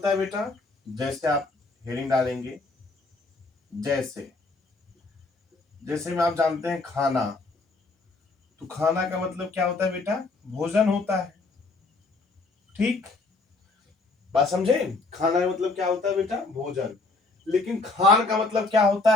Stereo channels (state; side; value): quieter; right; 3.5 dB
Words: है बेटा? जैसे आप हेडिंग डालेंगे, जैसे में आप जानते हैं खाना, तो खाना का मतलब क्या होता है बेटा? भोजन होता है। ठीक, बात समझे? खाना का मतलब क्या होता है बेटा? भोजन। लेकिन खान का मतलब क्या होता